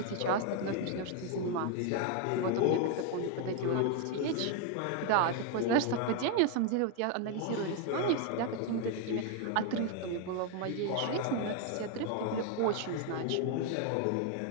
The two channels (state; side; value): different; both; correlation 0.01